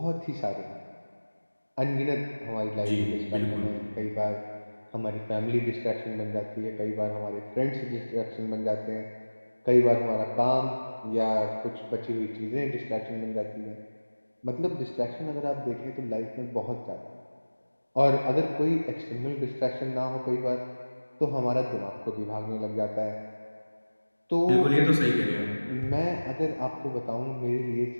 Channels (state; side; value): inverted; both; correlation -1.00